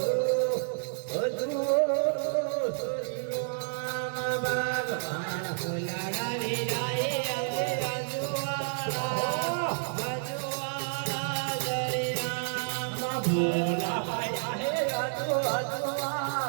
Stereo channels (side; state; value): left; silent; 58 dB below the other